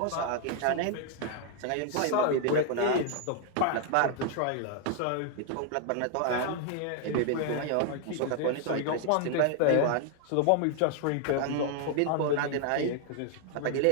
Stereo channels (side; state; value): both; different; correlation 0.00